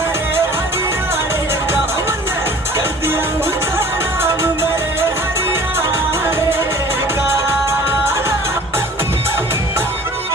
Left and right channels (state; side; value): normal; both; correlation 0.47